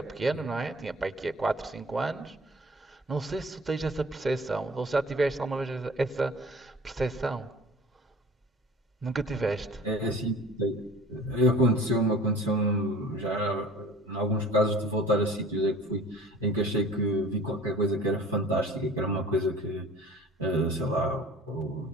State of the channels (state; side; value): normal; both; correlation 0.45